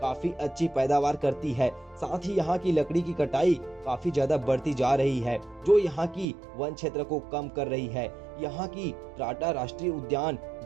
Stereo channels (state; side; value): drops out; left; at 6.2 s